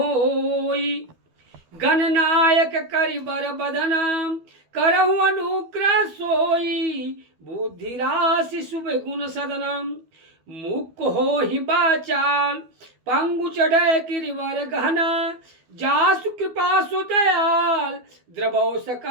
गणनायक करिबर बदन, करहु अनुग्रह सोई, बुद्धि राशि शुभ गुण सदनम। मुख हो ही बाचाल, पंगु चढ़े गिरिवर गहना, जासु कृपा सु दयाल, द्रवौ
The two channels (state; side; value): late; left; 12 ms